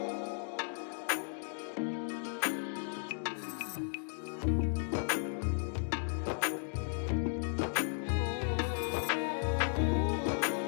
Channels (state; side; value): silent; right; 54 dB below the other